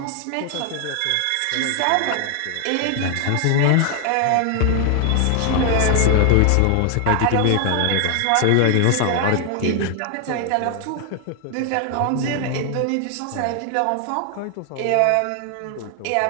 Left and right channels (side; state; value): both; different; correlation 0.00